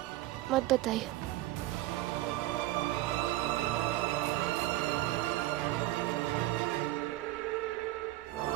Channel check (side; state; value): left; quieter; 16.8 dB